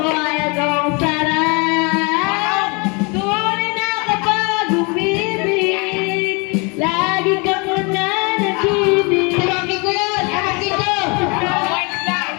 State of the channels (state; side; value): quieter; right; 30.2 dB